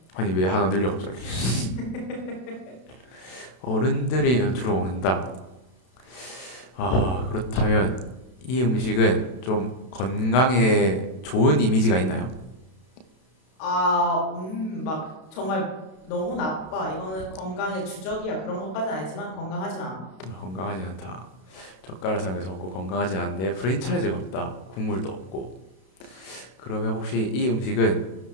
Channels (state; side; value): late; right; 32 ms